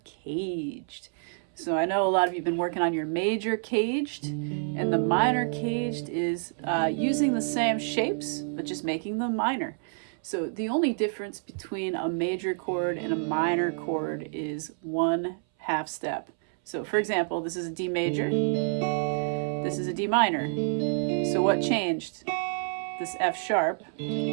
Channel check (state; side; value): silent; left; 59 dB below the other